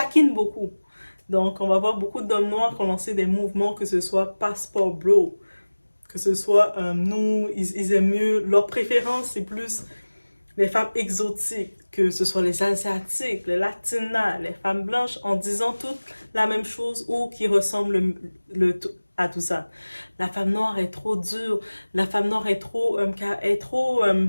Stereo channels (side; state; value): both; inverted; correlation -1.00